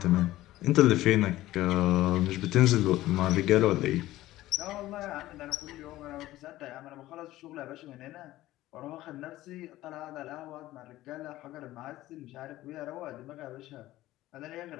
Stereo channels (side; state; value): right; quieter; 16.0 dB